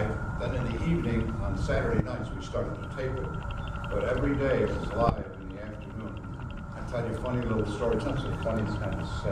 Then in the evening, on Saturday nights, we started to tape it. But every day it was live in the afternoon. I tell you funny little stories. Not so funny, it's kind of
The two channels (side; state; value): both; identical; correlation 1.00